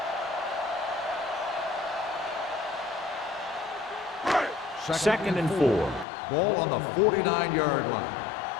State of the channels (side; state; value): right; drops out; at 6.1 s